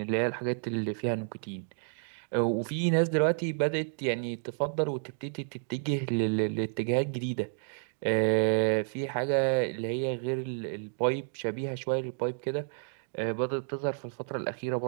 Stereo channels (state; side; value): silent; left; digital silence